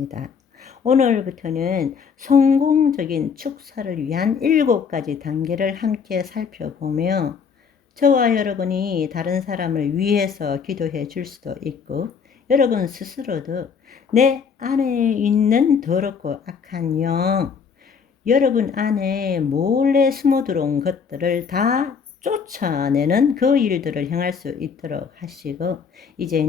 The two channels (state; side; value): quieter; right; 6.3 dB